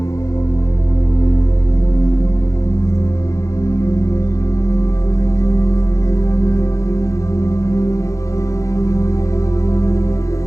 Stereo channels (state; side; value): late; right; 0.15 ms